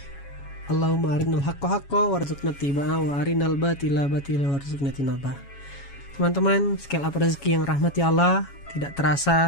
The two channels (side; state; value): right; late; 7.2 ms